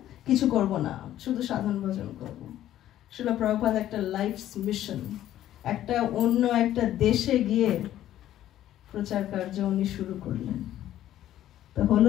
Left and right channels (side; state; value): right; quieter; 12.6 dB